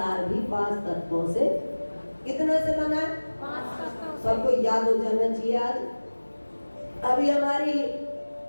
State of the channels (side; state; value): both; inverted; correlation -1.00